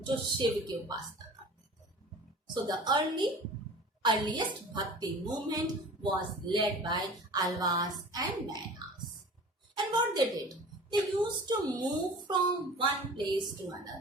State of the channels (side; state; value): both; normal; correlation 0.41